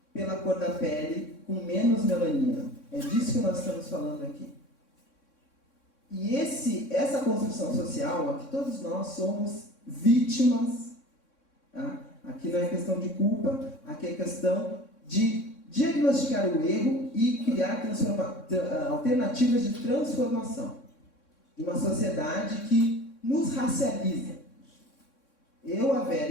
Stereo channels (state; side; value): late; right; 3.6 ms